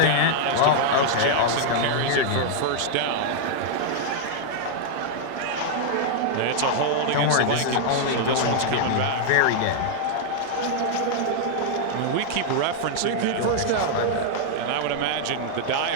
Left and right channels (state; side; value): different; both; correlation -0.01